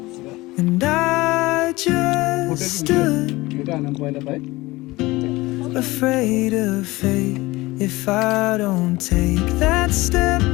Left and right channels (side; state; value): right; quieter; 20.4 dB